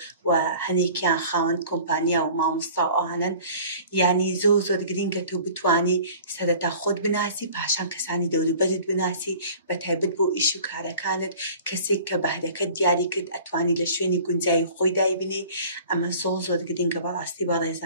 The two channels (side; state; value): both; inverted; correlation -0.46